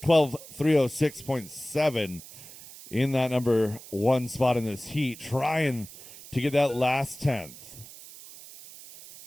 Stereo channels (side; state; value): right; noise; hiss, 17 dB below the sound